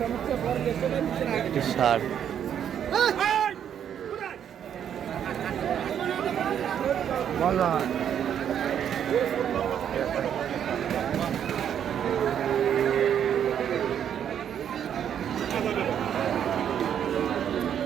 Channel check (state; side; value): quieter; left; 9.1 dB